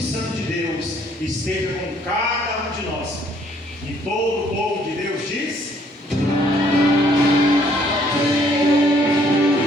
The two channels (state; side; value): normal; both; correlation 0.64